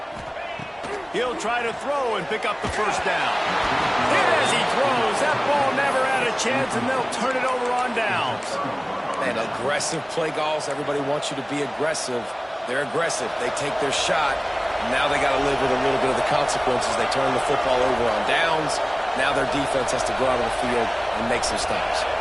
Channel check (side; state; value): both; identical; correlation 1.00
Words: He'll try to throw and pick up the first down. Hit as he throws. That ball never had a chance, and they'll turn it over on downs. And aggressive play calls. Everybody wants you to be aggressive. They're aggressive. They take their shot. Now they got to live with a little bit of the consequences. They turn the football over on downs. Now their defense has to go out on the field and make some stops.